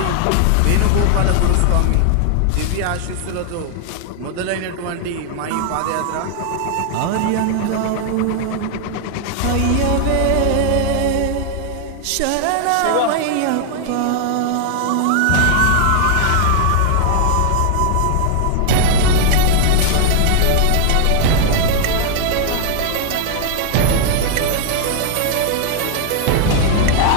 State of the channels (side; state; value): both; different; correlation 0.00